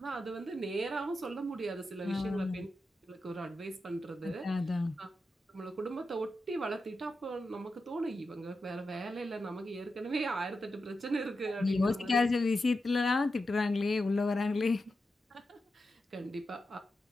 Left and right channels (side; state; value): both; normal; correlation 0.89